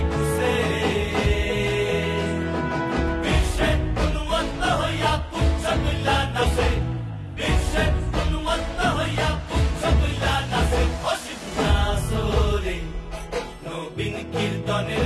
খুশে। বিশ্বে গুণবন্ত হইয়া পুচ্ছ তুল্লা নাচে, বিশ্বে গুণবন্ত হইয়া পুচ্ছ তুল্লা নাচে অসীম নাচরে। নবীন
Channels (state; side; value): identical; both; correlation 1.00